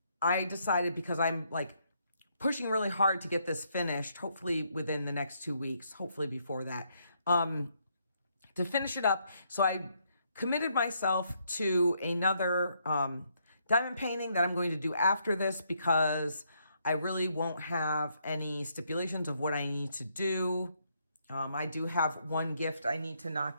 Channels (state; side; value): inverted; both; correlation -0.74